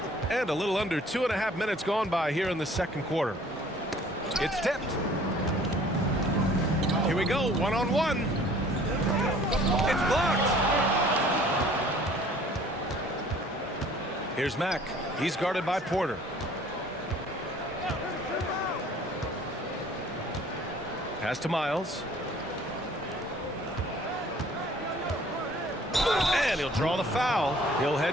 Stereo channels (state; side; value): normal; both; correlation 0.53